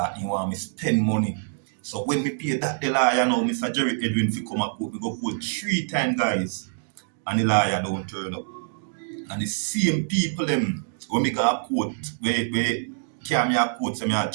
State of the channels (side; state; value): left; silent; digital silence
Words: he want me spend money. So when me pay that the lawyer now, Mr. Jerry Edwin fi come a court, me go court 3 times, guys. And the lawyer don't turn up. And the same people them when me go a court, where carry me a court, so me a